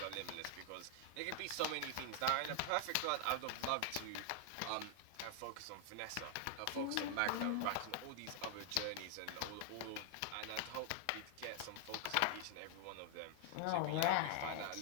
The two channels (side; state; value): both; different; correlation 0.00